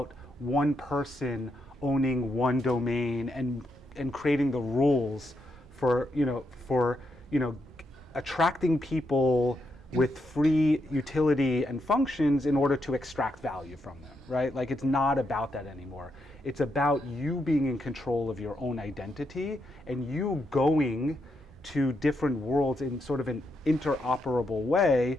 one person owning one domain and and creating the rules for attracting people with free utility and functions in order to extract value from them, right? Like, it's not about that anymore. It's about you being in control of your own identity and you going to different worlds in sort of an interoperable way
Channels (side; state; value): both; normal; correlation 0.81